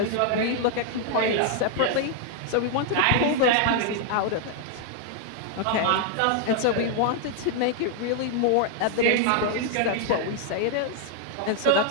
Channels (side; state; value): both; different; correlation 0.00